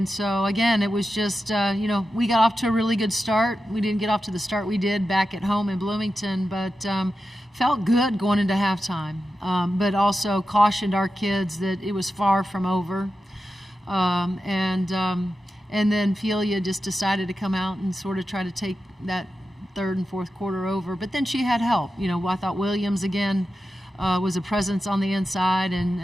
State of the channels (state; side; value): normal; both; correlation 0.91